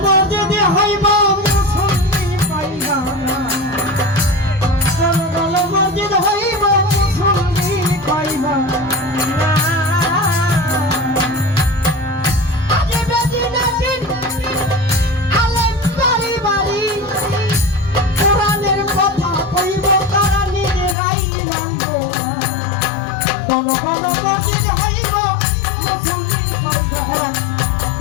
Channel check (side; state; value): right; drops out; at 21.0 s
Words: মসজিদে হইব মুসল্লি পাইবা না, ঘন ঘন মসজিদ হইব মুসল্লি পাইবা না। আজ বেদিন আলেম বাড়ি বাড়ি কোরআনের কথা কইব তারা নিজেরাই মানবো না। ঘন ঘন মসজিদ হইব মুসল্লি পাইবা না।